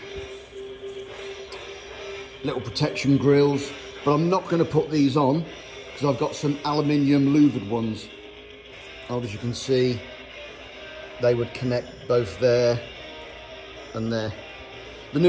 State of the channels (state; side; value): identical; both; correlation 1.00